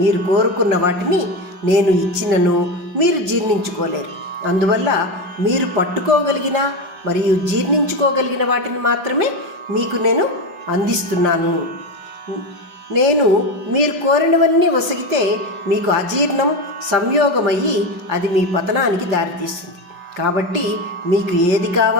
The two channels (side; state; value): left; late; 5.1 ms